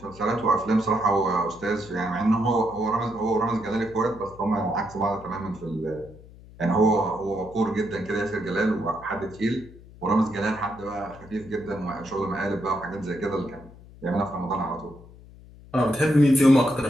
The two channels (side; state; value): left; noise; hum, 20 dB below the sound